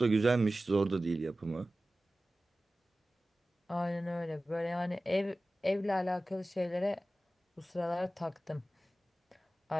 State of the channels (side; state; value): both; normal; correlation 0.96